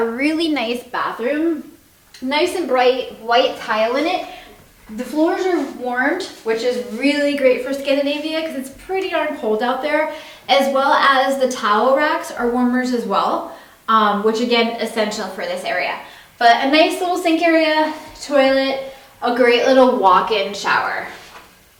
really nice bathroom. Nice and bright white tile in it. The floors are warmed, which is really great for Scandinavia because it's pretty darn cold out there, as well as the towel racks are warmers as well, which again, essential for this area. But a nice little sink area, toilet, a great little walk-in shower.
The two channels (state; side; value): identical; both; correlation 1.00